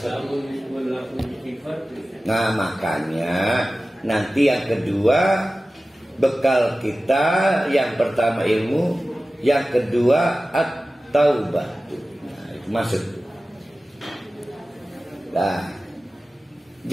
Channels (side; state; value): both; normal; correlation 0.96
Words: Nah makanya nanti yang kedua bekal kita, yang pertama ilmu, yang kedua at-taubah. Nah itu masuk. Nah